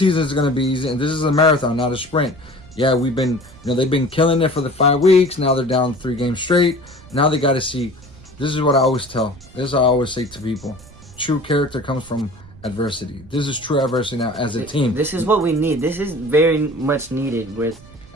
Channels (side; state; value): right; noise; rumble, 21 dB below the sound